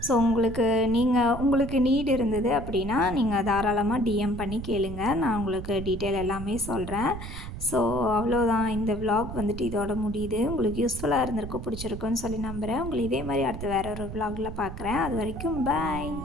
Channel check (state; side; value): noise; right; rumble, 9 dB below the sound